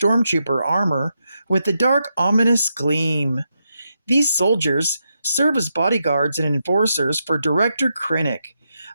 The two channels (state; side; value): inverted; both; correlation -0.84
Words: armor with a dark, ominous gleam. These soldiers serve as bodyguards and enforcers for Director Krennic,